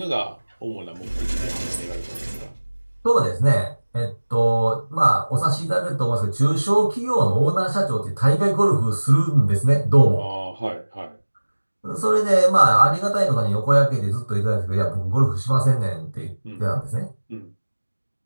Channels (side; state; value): both; inverted; correlation -1.00